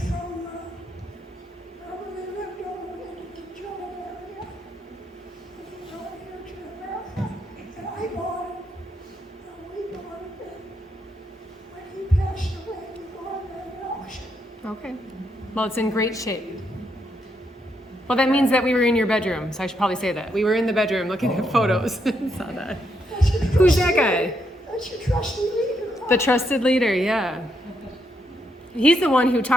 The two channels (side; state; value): both; normal; correlation 0.78